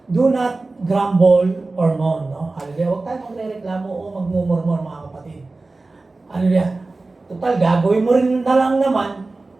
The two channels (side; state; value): left; quieter; 3.4 dB